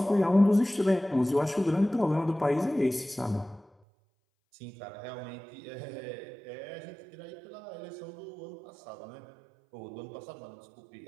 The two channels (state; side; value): drops out; left; at 3.7 s